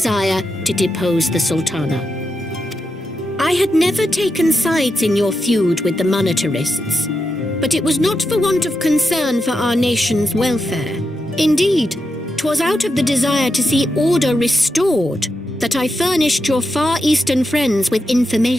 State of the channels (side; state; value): both; normal; correlation 0.86